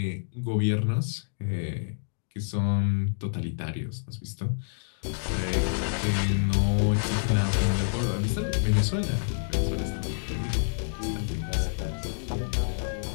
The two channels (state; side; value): silent; right; digital silence